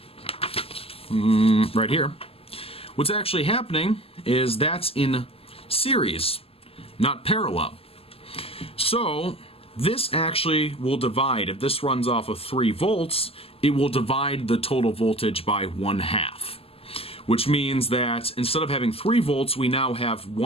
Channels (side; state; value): right; late; 0.28 ms